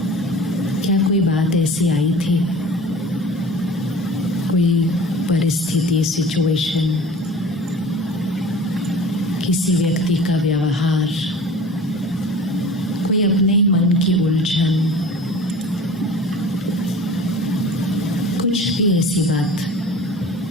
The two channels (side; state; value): both; normal; correlation 0.41